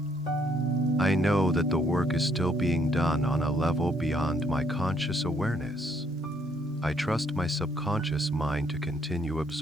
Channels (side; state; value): both; normal; correlation 0.69